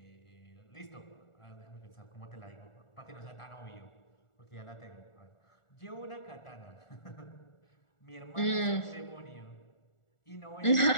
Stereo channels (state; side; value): late; right; 1.4 ms